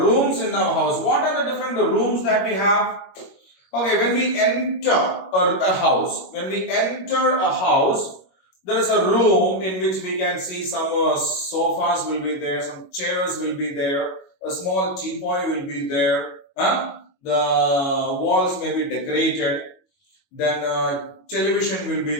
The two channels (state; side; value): late; right; 21 ms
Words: in our house. What are the different rooms that we have? Okay, when we enter a house, there is a room in which we can see some sofas will be there, some chairs will be there, a small teapot will be there, the walls may be decorated, then television will be